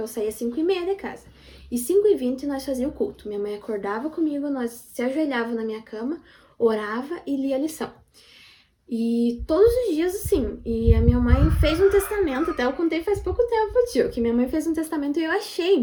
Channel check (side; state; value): both; identical; correlation 1.00